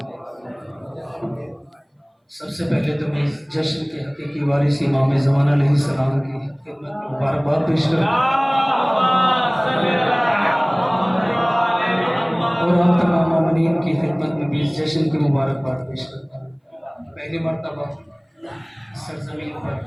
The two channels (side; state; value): both; identical; correlation 1.00